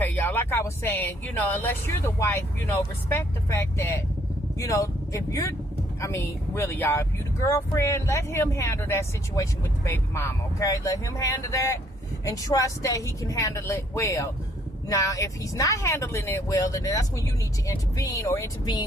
y'all, like I was saying, unless you're the wife, respect the fact that, if you're, really, y'all, if you the girlfriend, let him handle that situation with the baby mama, okay? Let him handle that and trust that he can handle it well. Now, if he's not handling it well, then that's when you need to intervene or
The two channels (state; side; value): normal; both; correlation 0.66